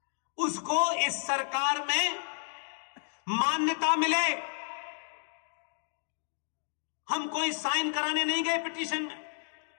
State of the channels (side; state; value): right; silent; digital silence